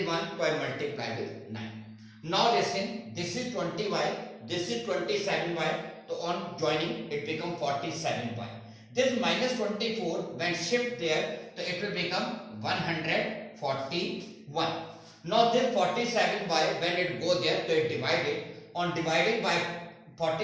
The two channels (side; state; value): both; identical; correlation 1.00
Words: 1, so I multiply with 9. Now listen, this is 20y, this is 27y, so on joining it becomes 47y. This minus 24 when shift there, so it will become 141. Now this 47y when it go there, so it divided. On dividing by